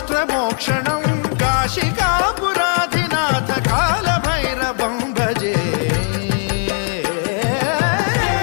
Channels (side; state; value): right; silent; 57 dB below the other